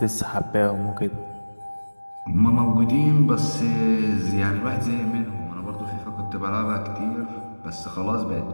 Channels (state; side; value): inverted; both; correlation -1.00